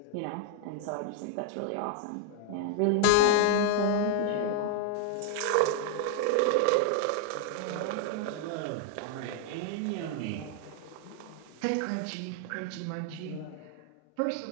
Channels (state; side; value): different; both; correlation 0.00